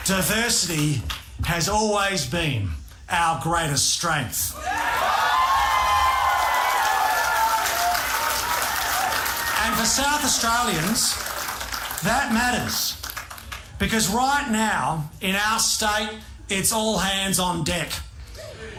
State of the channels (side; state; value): both; identical; correlation 1.00